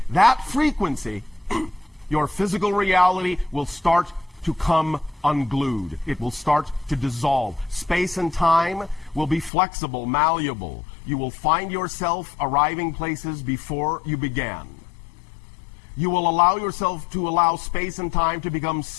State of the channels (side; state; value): right; drops out; at 9.5 s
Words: that frequency, your physical reality will start to come unglued. It will start to dissolve. Space and time will be flexible, malleable. You will find yourself arriving places before you began. You will allow yourself to allow space and time to become